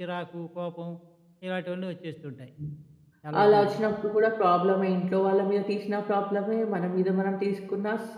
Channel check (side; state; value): both; identical; correlation 1.00